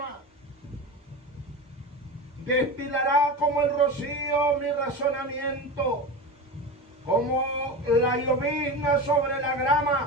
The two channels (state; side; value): normal; both; correlation 0.26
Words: Destilará como el rocío mi razonamiento. Como la llovizna sobre la